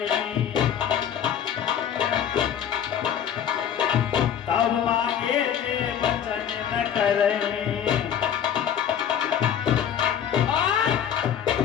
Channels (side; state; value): right; quieter; 9.0 dB